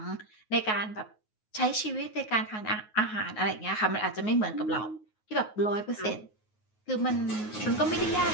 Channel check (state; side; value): late; right; 9.4 ms